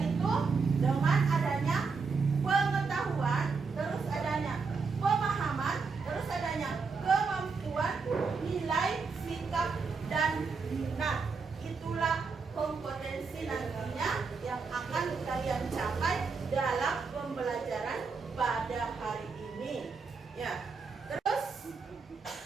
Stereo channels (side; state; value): left; quieter; 4.8 dB